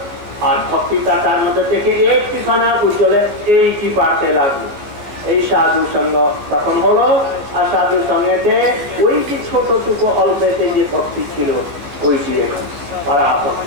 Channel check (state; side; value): late; left; 14 ms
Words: আর ভক্তিটা তার মধ্যে থেকে একটি খানা ওই জলে এইটি বাড়তে লাগলো এই সাধু সঙ্গ তখন হলো। আর সাধু সঙ্গেতে ওই যে ছোটটুকু অল্পেতে যে ভক্তি ছিল ওইটি পারা